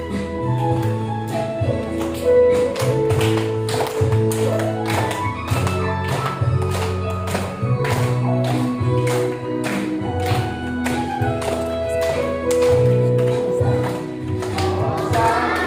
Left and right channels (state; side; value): noise; right; hum, 28 dB below the sound